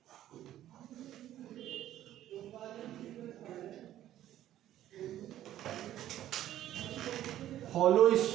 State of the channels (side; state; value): left; quieter; 12.7 dB